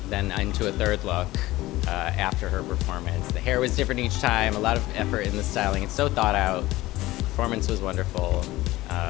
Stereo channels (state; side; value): quieter; right; 17.8 dB